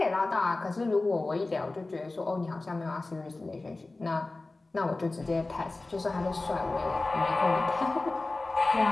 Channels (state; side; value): quieter; right; 3.2 dB